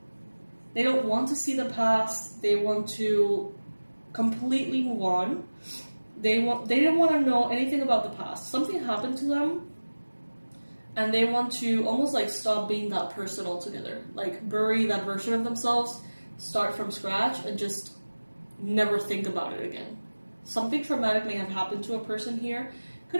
They don't want to see the past. They want to completely move on. They don't want to know anything about the past. Something happened to them, and they want to almost like stop being that person altogether. Like bury that version of themselves, start from scratch, and just never think about it again. Something traumatic may have happened to a person here. Could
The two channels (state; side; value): inverted; both; correlation -1.00